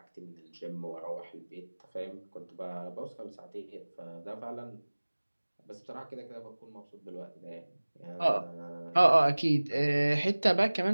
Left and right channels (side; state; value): both; inverted; correlation -1.00